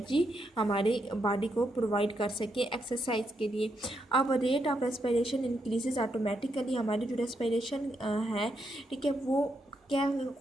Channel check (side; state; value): both; normal; correlation 0.80